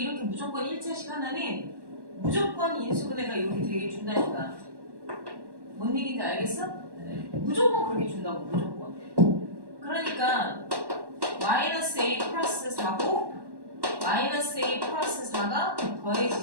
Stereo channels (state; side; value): late; left; 1.1 ms